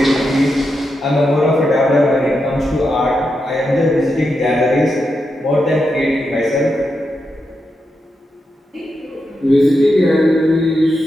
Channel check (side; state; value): both; normal; correlation 0.86